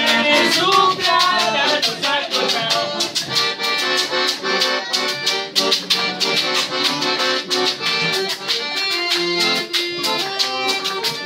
su clara, su saco.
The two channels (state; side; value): identical; both; correlation 1.00